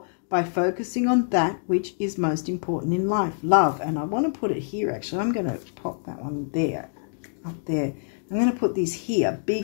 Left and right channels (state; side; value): silent; right; digital silence